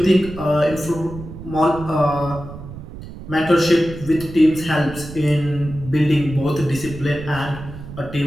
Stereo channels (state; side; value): noise; right; rumble, 13 dB below the sound